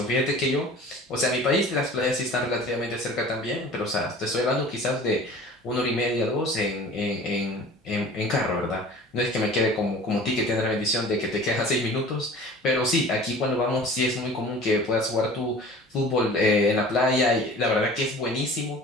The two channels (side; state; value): both; normal; correlation 0.43